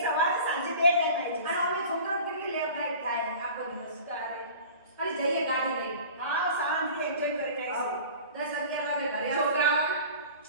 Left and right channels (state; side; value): inverted; both; correlation -0.41